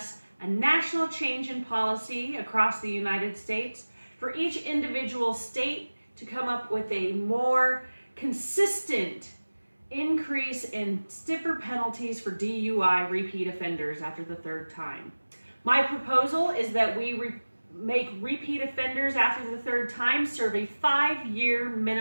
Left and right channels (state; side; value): inverted; both; correlation -1.00